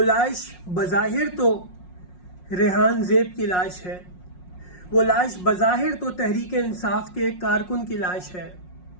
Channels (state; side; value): late; right; 5.5 ms